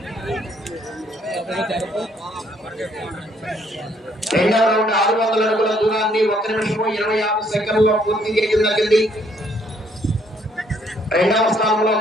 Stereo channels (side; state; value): both; normal; correlation 0.67